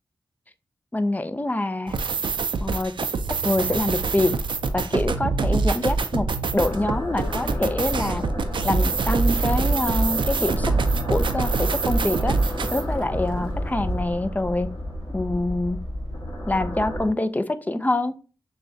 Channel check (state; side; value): normal; both; correlation 0.78